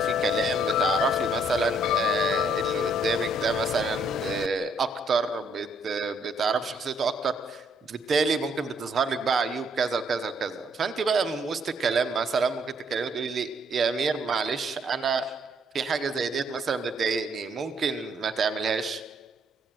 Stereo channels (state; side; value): normal; both; correlation 0.68